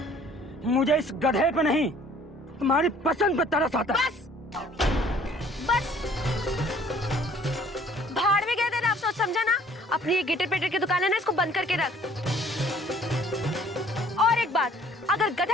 मुझे इस गधे पे नहीं, तुम्हारी पसंद पे तरस आता है। बस भाड़ में गए थे ना, अफसोस समझा ना। अपनी ये गिटर पेटर की दुकान है ना, इसको बंद करके रख। और एक बात, अगर गधा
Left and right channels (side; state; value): both; normal; correlation 0.56